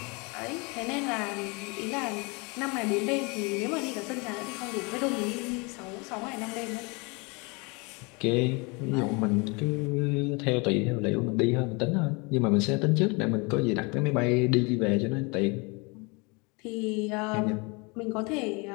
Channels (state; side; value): quieter; right; 29.2 dB